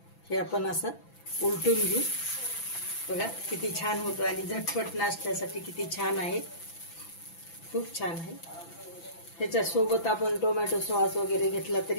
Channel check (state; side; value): late; right; 6.0 ms